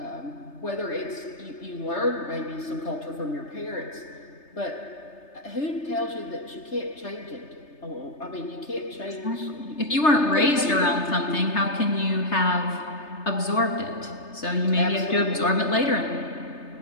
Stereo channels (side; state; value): right; late; 3.3 ms